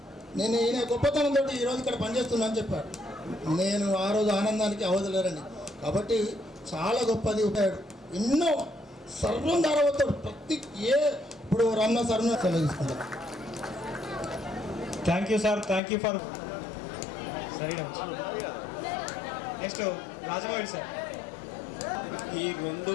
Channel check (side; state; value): right; drops out; at 15.8 s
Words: నేను ఈయన గొప్పతనంతో ఈరోజు ఇక్కడ పనిచేస్తున్నా అని చెప్పాడు. నేను ఆ రోజు ఆనందానికి అవదలేరండి. కాబట్టి చాలా గొప్పది ఉపయోగం. ఎన్నో సర్వం ధారవతాడు ప్రతి ఇప్పుడు రమణ సార్ను సెలవుకుంటాను. Thank you sir, thank you for. సరే నెక్స్ట్ రాజమౌళి సార్. ఈ